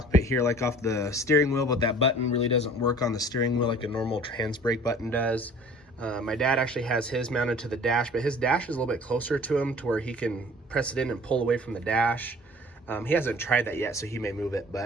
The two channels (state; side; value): normal; both; correlation 0.48